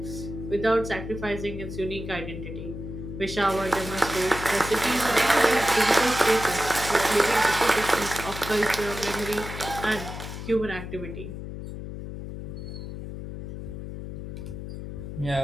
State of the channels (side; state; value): left; noise; hum, 8 dB below the sound